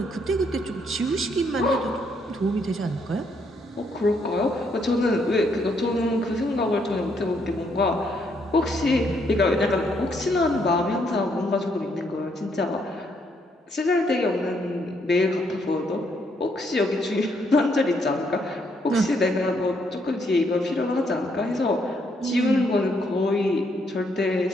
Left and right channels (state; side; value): normal; both; correlation 0.73